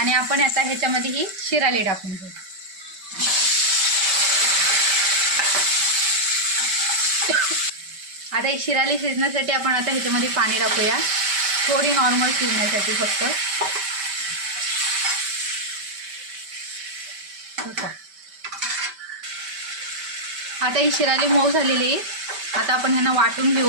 आपण आता ह्याच्यामध्ये ही शिराली टाकून घेऊ. आता ही शिराली शिजण्यासाठी आपण आता ह्याच्यामध्ये पाणी टाकूया. थोडी नॉर्मल शिजण्यासाठी फक्त. आता ही शिराली मऊ झालेली आहे. आता आपण ह्यांना वाटून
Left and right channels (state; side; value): late; left; 5.1 ms